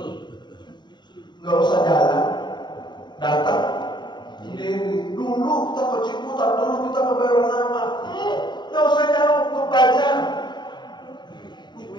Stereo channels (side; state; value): right; late; 0.21 ms